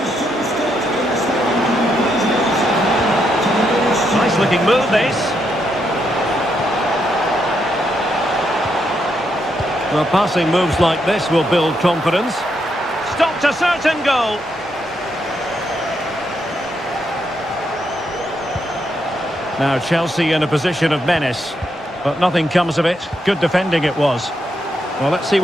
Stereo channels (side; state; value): both; normal; correlation 0.79